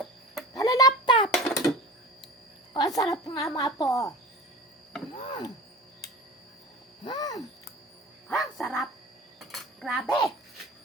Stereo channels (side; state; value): both; normal; correlation 0.36